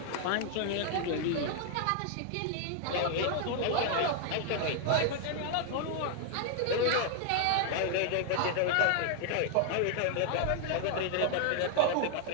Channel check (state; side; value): different; both; correlation 0.00